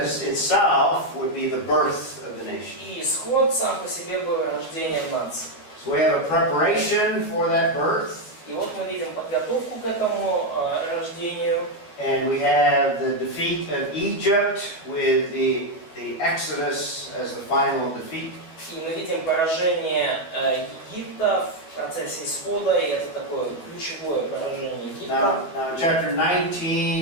itself would be the birth of the nation. И исход сам по себе был рождением нации. So we have a preparation for that birth. И вот мы видим подготовку к этому рождению. And we have the defeat of Egypt with the Exodus as the final defeat. И мы видим поражение Египта в процессе исхода, и это такое ключевое поражение Египта. Now, chapter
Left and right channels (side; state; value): right; late; 12 ms